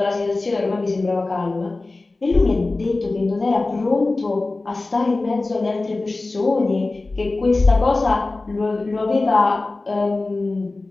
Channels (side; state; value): right; quieter; 3.3 dB